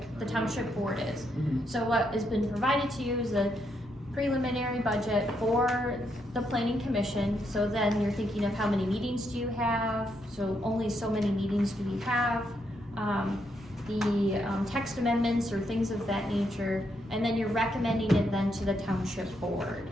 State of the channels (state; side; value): normal; both; correlation 0.78